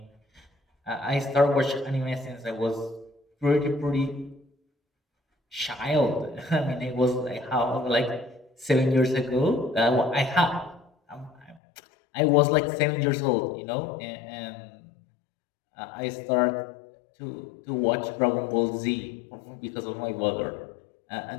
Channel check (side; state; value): right; drops out; at 11.6 s